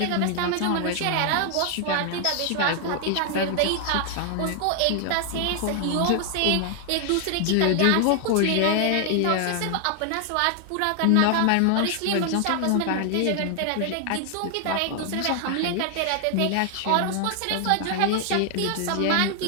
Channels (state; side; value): different; both; correlation 0.00